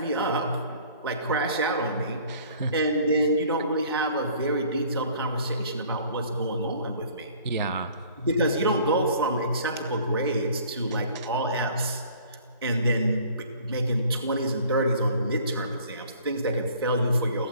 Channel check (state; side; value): inverted; both; correlation -0.52